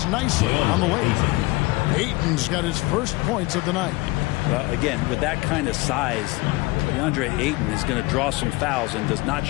nicely on the way. Ayton's got his first points of the night. Well, again, with that kind of size, DeAndre Ayton is going to draw some fouls and does not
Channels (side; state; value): right; quieter; 22.1 dB